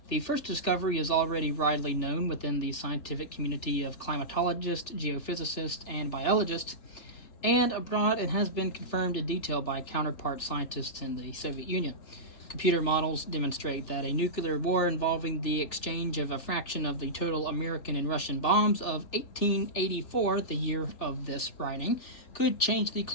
The first discovery is already widely known within the scientific community of climatologists, geophysicists, and biologists, and abroad it has been confirmed in detail by counterpart scientists in the Soviet Union. Computer models demonstrate that a nuclear war involving the exchange of a fraction of the total American and Russian bombs of 1884, the year of this writing, could change the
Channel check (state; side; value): late; right; 3.3 ms